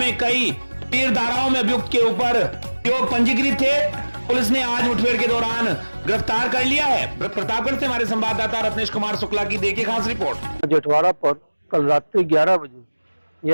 कई तीर धाराओं में अभियुक्त के ऊपर पंजीकृत थे। पुलिस ने आज मुठभेड़ के दौरान गिरफ्तार कर लिया है। प्रतापगढ़ से हमारे संवाददाता रत्नेश कुमार शुक्ला की देखिए खास रिपोर्ट। जेठवाड़ा पर कल रात्रि 11 बजे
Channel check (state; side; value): inverted; both; correlation -1.00